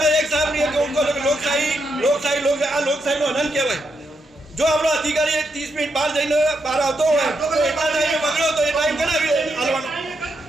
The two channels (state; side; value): normal; both; correlation 0.81